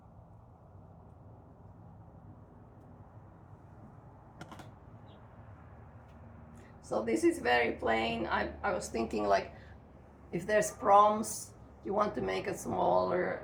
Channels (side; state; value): both; identical; correlation 1.00